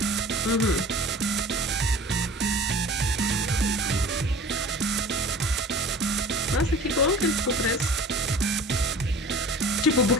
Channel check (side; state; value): both; normal; correlation 0.42